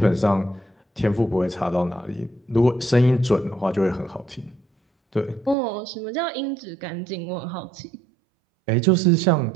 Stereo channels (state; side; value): drops out; left; at 5.6 s